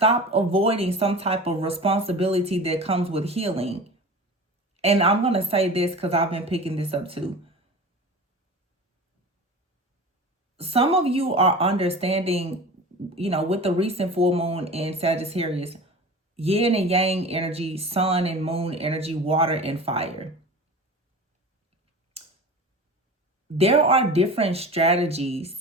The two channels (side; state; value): both; normal; correlation 0.35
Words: avoiding some type of responsibility that comes with healing. And I'm going to say this because I've been picking this up too. Some of you are understanding, with the recent full moon in Sagittarius, yin and yang energy, sun and moon energy, water and fire. There are different strategies